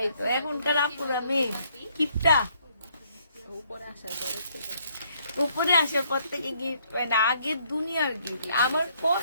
এখনকার আপুর আমি গিফটটা উপরে আসার পর থেকে গিফট পাই না। আগের দুনিয়ার গিফট আমার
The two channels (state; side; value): inverted; both; correlation -0.68